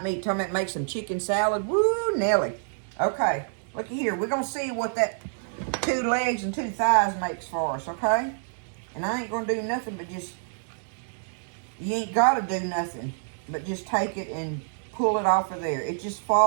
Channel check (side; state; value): left; silent; digital silence